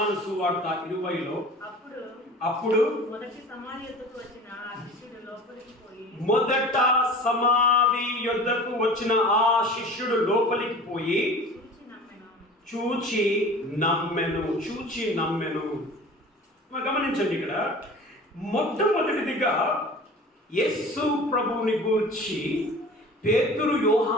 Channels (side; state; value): both; normal; correlation 0.40